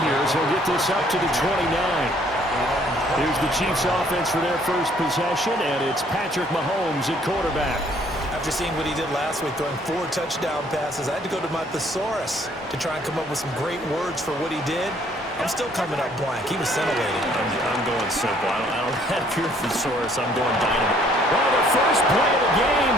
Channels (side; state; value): both; normal; correlation 0.62